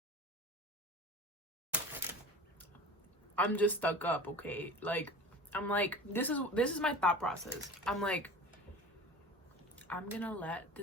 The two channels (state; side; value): normal; both; correlation 0.35